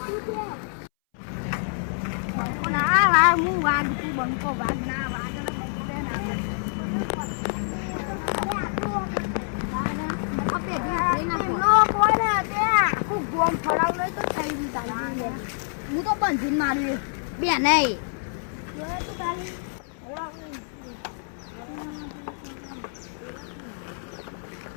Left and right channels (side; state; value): right; silent; 61 dB below the other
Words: બંકો વાગ ના વાગ હું તો બંધીને માર્યું બે નહીં